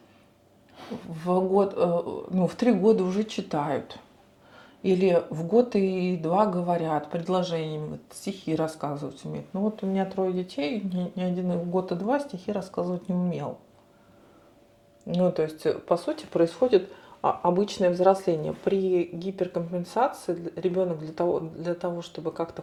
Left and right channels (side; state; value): both; identical; correlation 1.00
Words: в 3 года уже читают. Или в год и 2 говорят предложениями, вот стихи рассказывать умеют. Ну вот у меня 3 детей, ни один в год и 2 стихи рассказывать не умел. Ну, то есть, по сути, происходит обычное взросление. При гиперкомпенсации ребенок для того, чтобы как-то